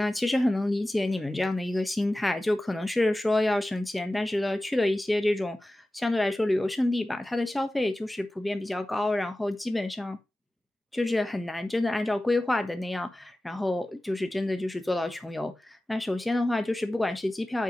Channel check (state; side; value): normal; both; correlation 0.96